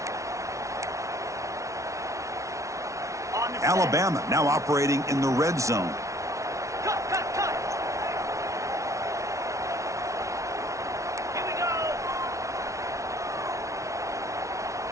Alabama now operating in the red zone. Cut. Here we go.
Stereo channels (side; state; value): left; late; 0.15 ms